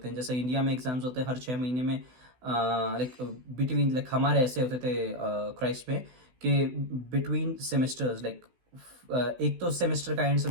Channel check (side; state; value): left; late; 16 ms